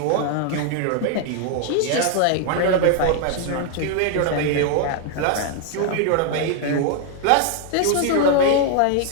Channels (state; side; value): different; both; correlation 0.00